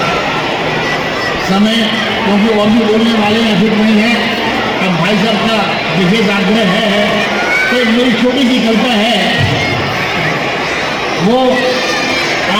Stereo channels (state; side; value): identical; both; correlation 1.00